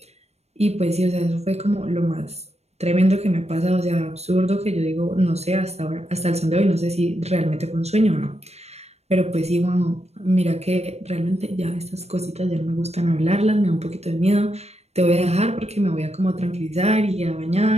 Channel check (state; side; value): late; left; 0.31 ms